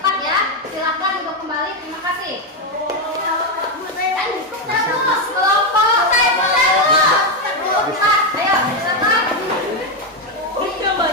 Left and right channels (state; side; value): normal; both; correlation 0.07